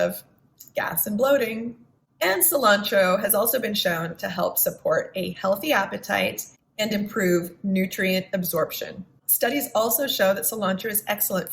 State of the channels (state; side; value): identical; both; correlation 1.00